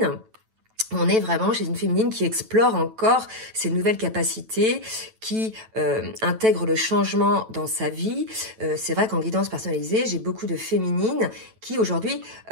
on est vraiment chez une féminine qui explore encore ses nouvelles capacités, qui intègre le changement dans sa vie. C'est vrai qu'en guidance personnalisée, j'ai beaucoup de féminines qui aujourd'hui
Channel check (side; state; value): left; late; 9.1 ms